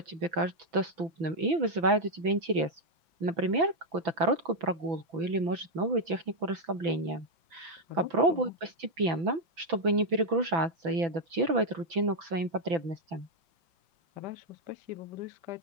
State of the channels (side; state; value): left; late; 6.0 ms